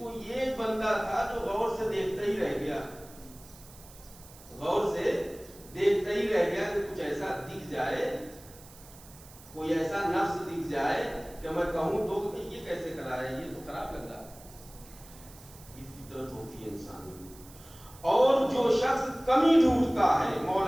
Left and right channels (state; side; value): noise; right; hiss, 21 dB below the sound